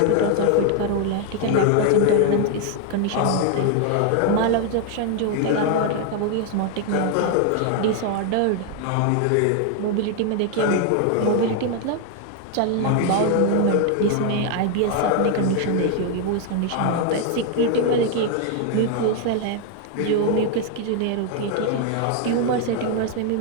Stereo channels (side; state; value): both; different; correlation 0.00